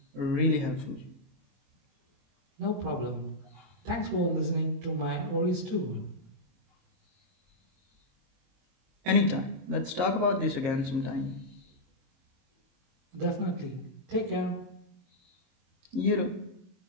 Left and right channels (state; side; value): late; left; 22 ms